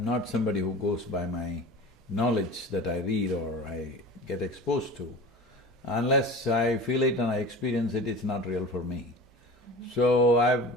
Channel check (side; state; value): both; normal; correlation 0.36